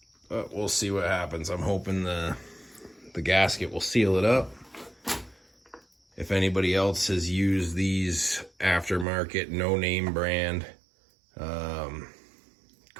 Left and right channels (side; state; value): left; drops out; at 9.1 s